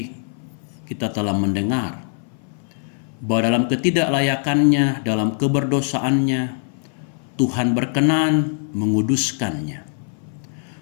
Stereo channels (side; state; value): right; silent; 60 dB below the other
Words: kita telah mendengar bahwa dalam ketidaklayakannya, dalam keberdosaannya, Tuhan berkenan menguduskannya.